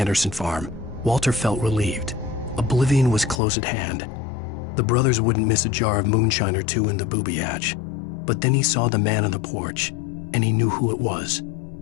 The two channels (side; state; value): right; drops out; at 3.4 s